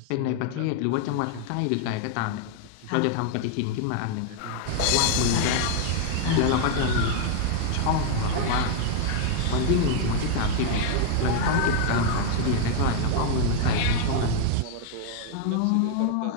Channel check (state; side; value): different; both; correlation 0.00